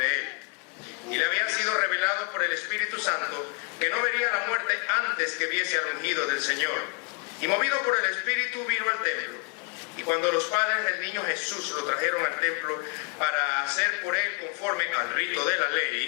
él. Y le había sido revelado por el Espíritu Santo que no vería la muerte antes que viese al ungido del Señor. Y movido por el Espíritu vino al templo. Y cuando los padres del niño Jesús lo trajeron al templo para hacer por él conforme al rito de la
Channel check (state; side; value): quieter; right; 34.6 dB